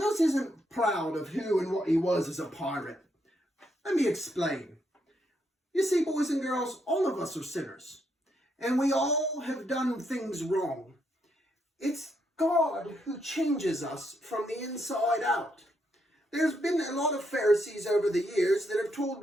isn't proud of who and what he was as a pirate. Let me explain. You see, boys and girls, all of us are sinners, and we all have done things wrong. It's God who changes us from the inside out. There's been a lot of Pharisees over the years that have told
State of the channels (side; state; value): both; normal; correlation 0.77